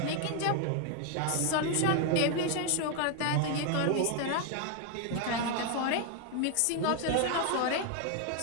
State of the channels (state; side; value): different; both; correlation 0.01